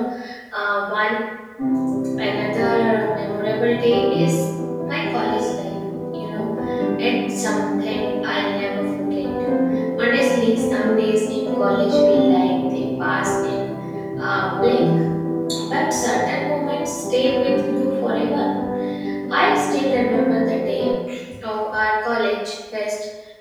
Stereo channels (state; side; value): identical; both; correlation 1.00